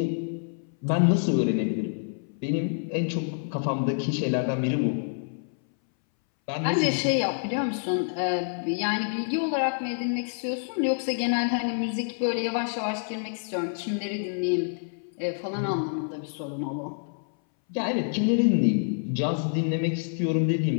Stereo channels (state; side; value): silent; right; 60 dB below the other